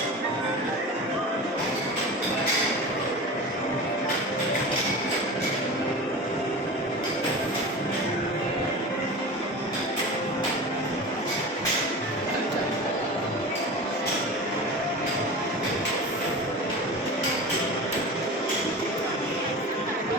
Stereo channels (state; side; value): normal; both; correlation 0.31